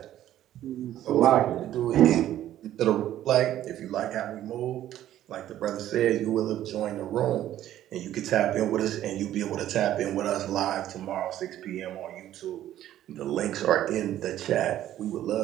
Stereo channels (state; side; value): quieter; left; 12.5 dB